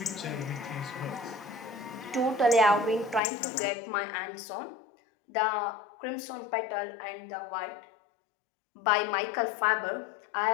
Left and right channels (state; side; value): drops out; right; at 3.2 s